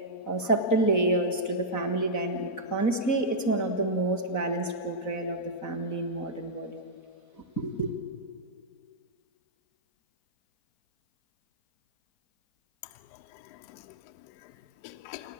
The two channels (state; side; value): late; right; 4.0 ms